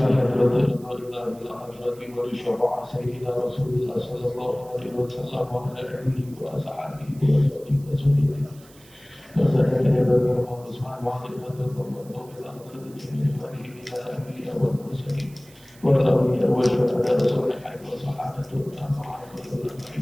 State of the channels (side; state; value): right; noise; hiss, 25 dB below the sound